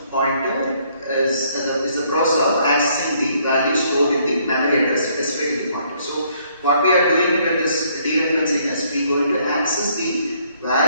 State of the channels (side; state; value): both; inverted; correlation -0.67